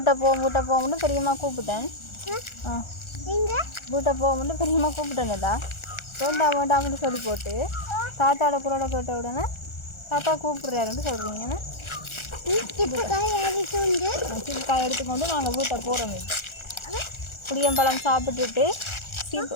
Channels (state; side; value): late; right; 1.4 ms